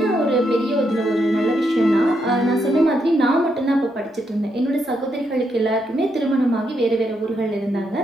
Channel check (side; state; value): both; normal; correlation 0.79